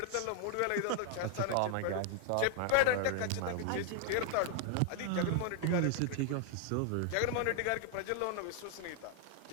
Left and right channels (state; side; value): different; both; correlation 0.00